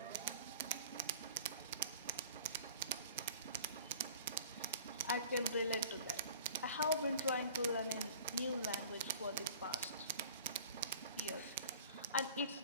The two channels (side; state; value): both; inverted; correlation -0.45